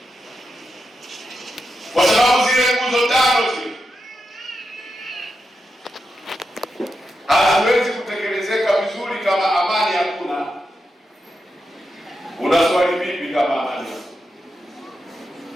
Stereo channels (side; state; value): both; normal; correlation 0.87